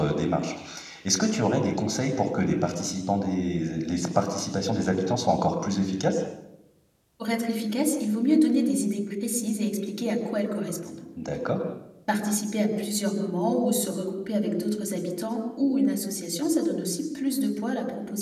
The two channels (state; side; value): identical; both; correlation 1.00